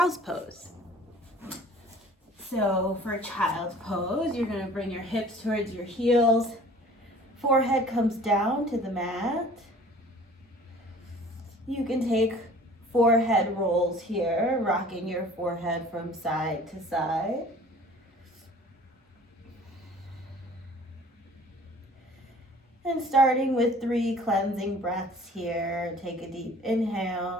pose. So for a child's pose, you're going to bring your hips towards your heels. Forehead comes down to the mat. You can take forehead rolls here, rocking your forehead from side to side. And starting with 3 cleansing breaths here, take a deep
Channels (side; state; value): both; normal; correlation 0.49